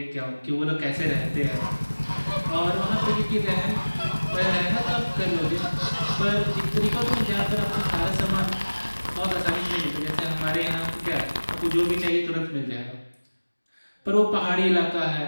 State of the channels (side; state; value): both; inverted; correlation -1.00